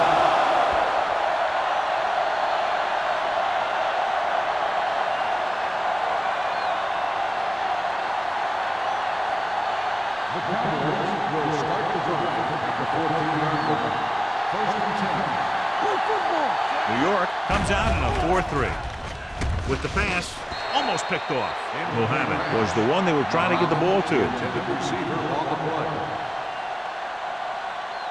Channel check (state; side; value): identical; both; correlation 1.00